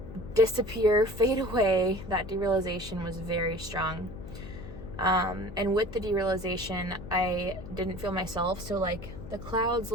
disappear, fade away, that derealization was very strong. And with the derealization, I didn't feel myself. So like the clouds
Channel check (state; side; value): noise; left; hum, 13 dB below the sound